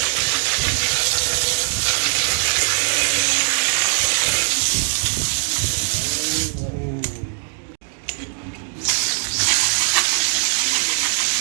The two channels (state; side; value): silent; left; digital silence